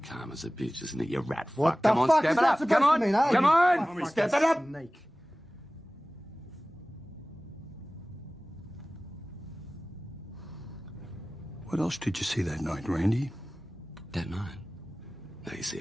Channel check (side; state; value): both; normal; correlation 0.98